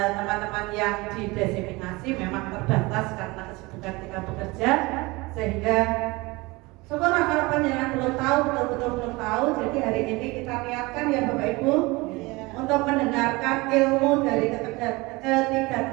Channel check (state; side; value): quieter; left; 23.3 dB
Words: yang dideseminasi memang terbatas karena kesibukan kita bekerja, sehingga syukurlah kalau panjenengan belum tahu, betul-betul belum tahu. Jadi hari ini kita niatkan ya Bapak Ibu untuk mendengarkan ilmu dari ketiga